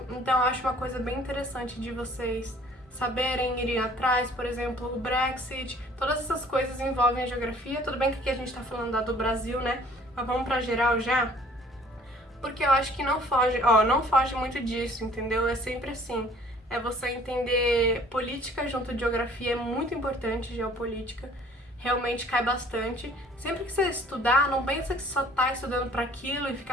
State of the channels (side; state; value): both; normal; correlation 0.54